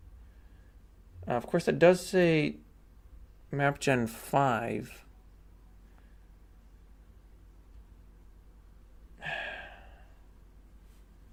Of course, that does say map gen 5.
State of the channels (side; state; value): both; identical; correlation 1.00